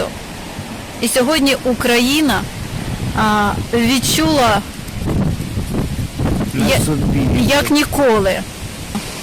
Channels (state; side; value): identical; both; correlation 1.00